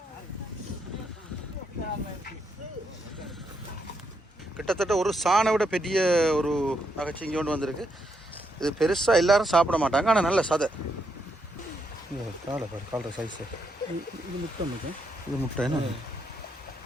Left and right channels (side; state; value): both; normal; correlation 0.78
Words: கிட்டத்தட்ட ஒரு சாணை விட பெரிய ஒரு நகைச்சிங்கி கொண்டு வந்திருக்கு. இது பெருசாக எல்லாரும் சாப்பிட மாட்டாங்க, ஆனால் நல்ல சதை. காலை சைஸு இது முட்டை. இது முட்டை என்ன